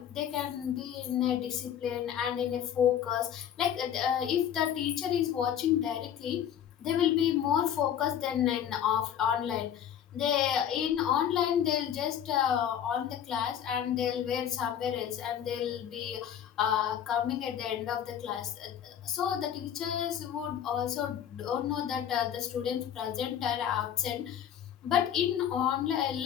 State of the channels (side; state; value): right; quieter; 9.6 dB